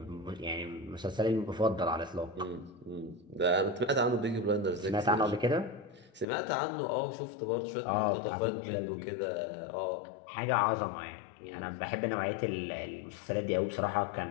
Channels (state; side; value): drops out; right; at 6.2 s